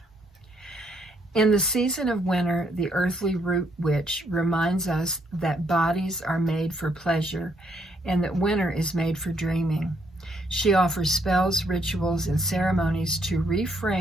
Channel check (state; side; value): normal; both; correlation 0.72